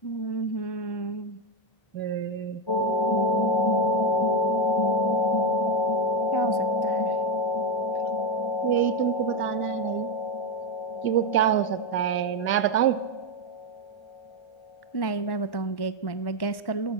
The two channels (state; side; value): late; right; 1.1 ms